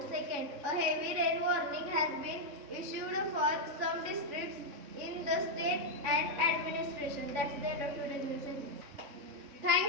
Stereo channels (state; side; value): late; left; 3.6 ms